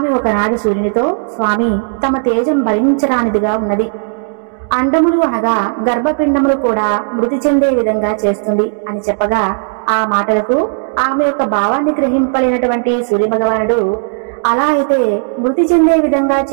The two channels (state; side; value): silent; left; digital silence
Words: ఒకనాడు సూర్యునితో, స్వామి, తమ తేజం భరించరానిదిగా ఉన్నది. అండములు అనగా గర్భపిండములు కూడా మృతి చెందే విధంగా చేస్తుంది అని చెప్పగా ఆ మాటలకు ఆమె యొక్క భావాన్ని గ్రహింపలేనటువంటి సూర్య భగవానుడు, అలా అయితే మృతి చెందే విధంగా